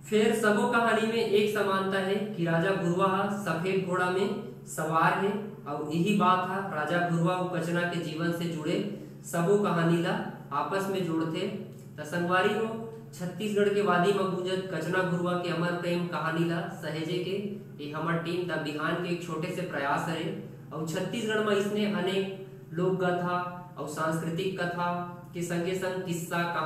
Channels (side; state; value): both; identical; correlation 1.00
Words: फिर सबो कहानी में एक समानता है कि राजा गुरुआ सफेद घोड़ा में सवार है और यही बात है राजा गुरुआ और कचना के जीवन से जुड़े सबो कहानी ला आपस में जोड़ते। त संगवारी हो छत्तीसगढ़ के वादी में गुंजत कचना गुरुआ के अमर प्रेम कहानी ला सहेजे के ये हमार टीम द बिहान के एक छोटे से प्रयास है। और छत्तीसगढ़ में इसने अनेक लोक कथा और सांस्कृतिक कथा के संगे संग किस्सा